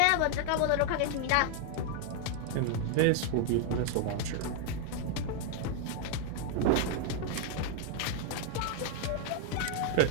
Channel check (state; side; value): different; both; correlation 0.00